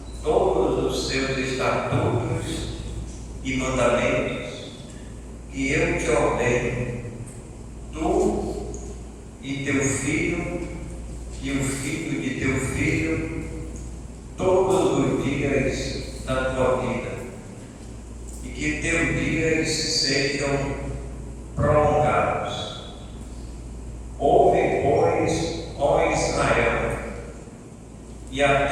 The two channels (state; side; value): identical; both; correlation 1.00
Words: todos os seus estatutos e mandamentos que eu te ordeno, tu e teu filho e o filho de teu filho, todos os dias da tua vida, e que teus dias sejam prolongados. Ouve, pois, ó Israel, e